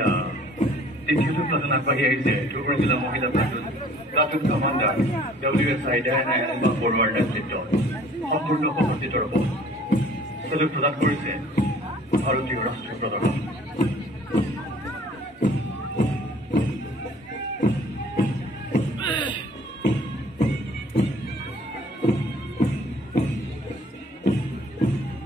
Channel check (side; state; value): both; normal; correlation 0.53